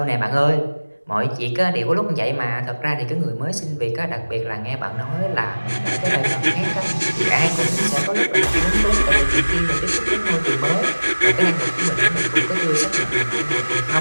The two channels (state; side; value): inverted; both; correlation -1.00